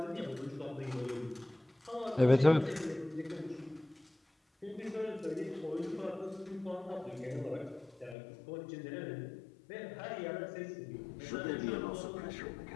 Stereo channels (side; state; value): right; drops out; at 8.2 s